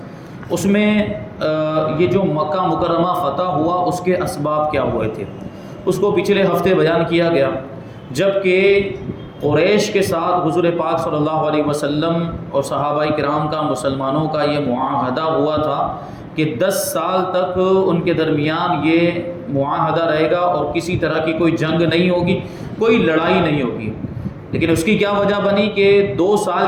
اس میں یہ جو مکہ مکرمہ فتح ہوا اس کے اسباب کیا ہوئے تھے اس کو پچھلے ہفتے بیان کیا گیا، جبکہ قریش کے ساتھ حضور پاک صلی اللہ علیہ وسلم اور صحابہ کرام کا مسلمانوں کا یہ معاہدہ ہوا تھا کہ 10 سال تک ان کے درمیان یہ معاہدہ رہے گا اور کسی طرح کی کوئی جنگ نہیں ہوگی، کوئی لڑائی نہیں ہوگی۔ لیکن اس کی کیا وجہ بنی کہ 2 سال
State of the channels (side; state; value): both; identical; correlation 1.00